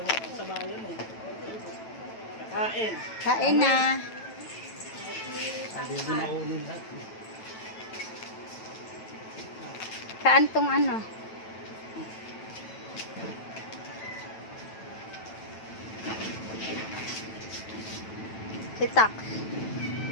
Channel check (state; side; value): late; right; 9.0 ms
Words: ako sa bayan eh. Kain. Kain na. Sabi mo na kunin lahat. Saan tong ano? Si Tax.